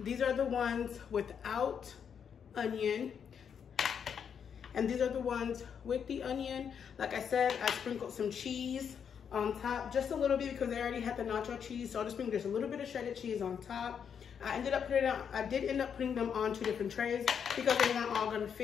are the ones without onion. And these are the ones with the onion. Like I said, I sprinkled some cheese on top, just a little bit because they already had the nacho cheese. So I'll just bring just a little bit of shredded cheese on top. I did end up putting them on 2 different trays because they weren't all gonna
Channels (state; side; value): quieter; right; 7.4 dB